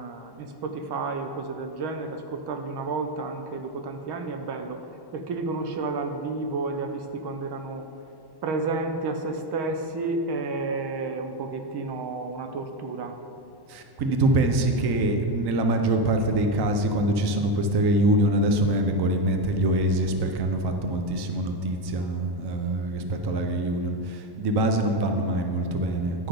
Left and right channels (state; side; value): late; left; 1.1 ms